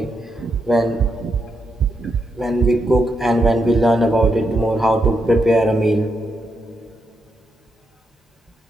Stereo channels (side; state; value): both; normal; correlation 0.82